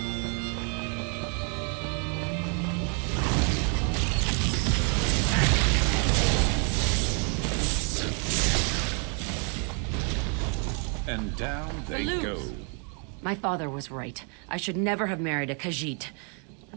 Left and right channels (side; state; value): left; quieter; 39.6 dB